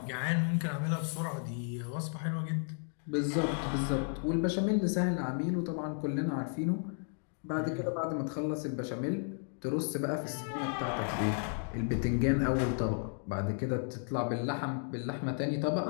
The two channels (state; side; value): silent; right; 55 dB below the other